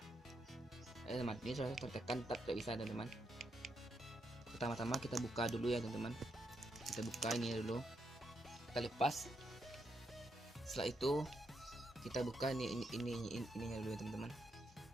Teman, ini sudah tertekan, tetap tidak bisa teman-teman. Pertama-tama kita buka dulu ya teman-teman. Kita buka ini dulu, kita lepas. Setelah itu kita buka ininya dulu ya teman-teman.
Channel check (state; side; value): normal; both; correlation 0.81